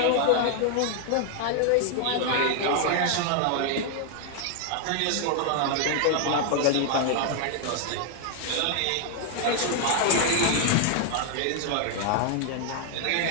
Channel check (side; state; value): both; different; correlation 0.00